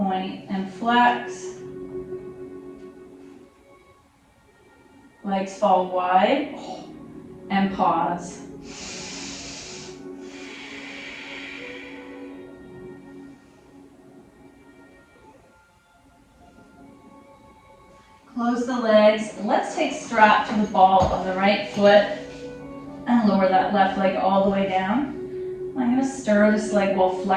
and flex. Legs fall wide and pause. Close the legs. Let's take strap to the ball of the right foot and lower that left leg all the way down. I'm going to stir this leg while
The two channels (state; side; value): identical; both; correlation 1.00